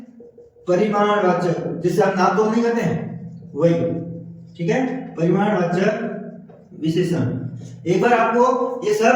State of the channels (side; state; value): both; identical; correlation 1.00